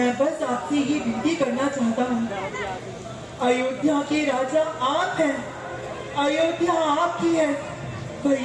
बस आपसे ये विनती करना चाहता हूँ, अयोध्या के राजा आप हैं, अयोध्या आपकी है।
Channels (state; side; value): identical; both; correlation 1.00